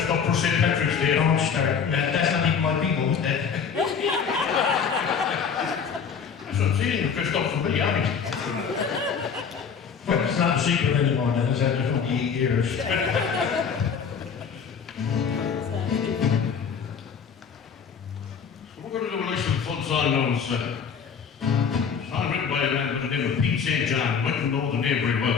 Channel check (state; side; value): quieter; right; 6.6 dB